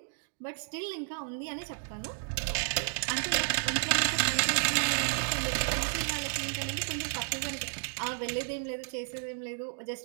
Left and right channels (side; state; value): left; silent; digital silence